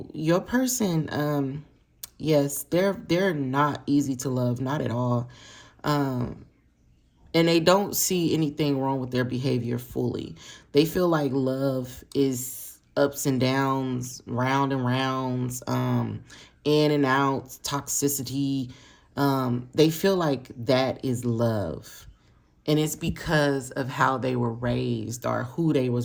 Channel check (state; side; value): identical; both; correlation 1.00